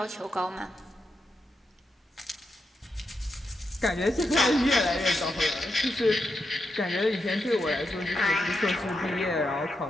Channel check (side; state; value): both; normal; correlation 0.85